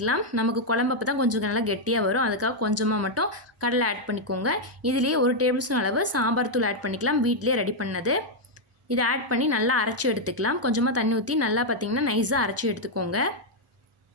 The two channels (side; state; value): both; normal; correlation -0.01